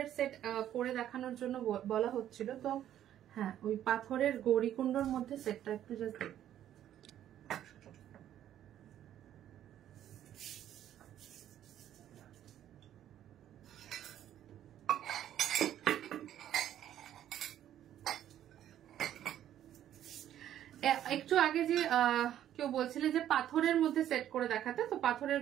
সেট করে দেখানোর জন্য বলা হচ্ছিল, তো হ্যাঁ ওই পাথরের গৌরীকুণ্ডর মধ্যে সেটটা একটু জাস্ট একটু আগে যে কেউ বলছিলে যে পাথরের মধ্যে সেট করে দেখাতে, তো পাথরের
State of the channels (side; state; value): left; quieter; 11.3 dB